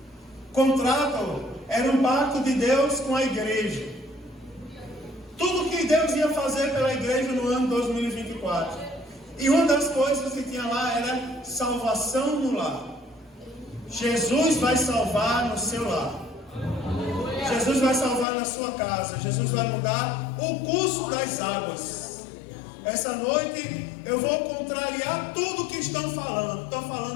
Contrato era um pacto de Deus com a igreja. Tudo que Deus ia fazer pela igreja no ano 2024. E uma das coisas que tinha lá era salvação no lar. Jesus vai salvar no seu lar. Jesus vai salvar na sua casa. Jesus vai mudar o curso das águas. Essa noite eu vou contrariar tudo que estão falando. Estão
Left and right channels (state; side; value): drops out; right; at 18.2 s